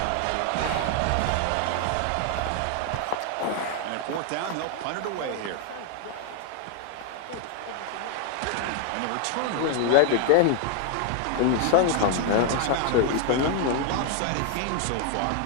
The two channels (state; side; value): different; both; correlation 0.00